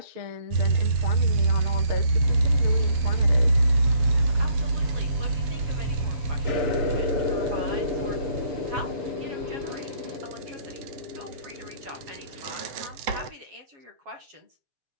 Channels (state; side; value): late; left; 7.6 ms